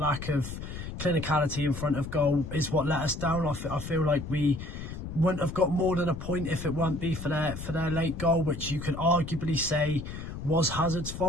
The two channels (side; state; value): left; noise; rumble, 8 dB below the sound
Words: of clinicality in front of goal is what let us down. I feel like we wouldn't have got more than a point if it weren't be for their late goal, which you could arguably say was Hazard's